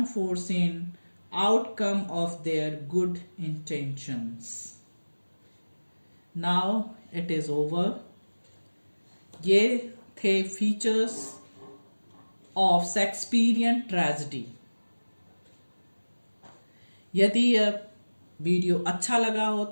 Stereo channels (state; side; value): inverted; both; correlation -1.00